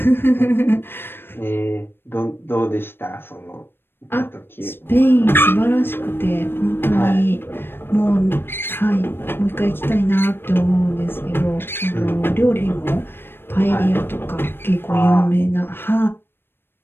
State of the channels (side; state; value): right; late; 0.10 ms